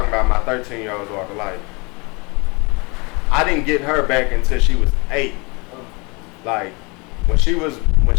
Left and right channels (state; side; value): quieter; right; 28.7 dB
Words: about, my 13-year-old daughter. Like, I didn't get her back until she was 8. Like, when she